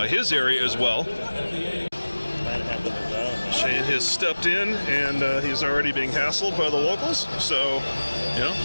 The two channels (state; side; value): inverted; both; correlation -1.00